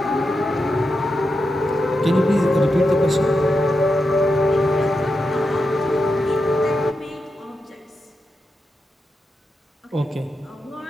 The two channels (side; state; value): both; normal; correlation 0.87